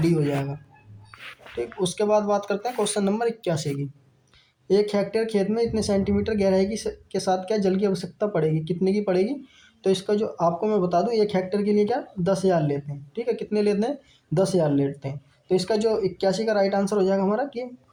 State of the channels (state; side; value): identical; both; correlation 1.00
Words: हो जाएगा। ठीक, उसके बाद बात करते हैं क्वेश्चन नंबर 81 की। 1 हेक्टेयर खेत में इतने सेंटीमीटर गहराई के साथ क्या जल की आवश्यकता पड़ेगी? कितने की पड़ेगी? तो इसका जो आपको मैं बता दूं 1 हेक्टेयर के लिए क्या 10,000 लेते हैं। ठीक है, कितने लेते हैं? 10,000 लेते हैं। तो इसका जो 81 का राइट आंसर हो जाएगा हमारा कि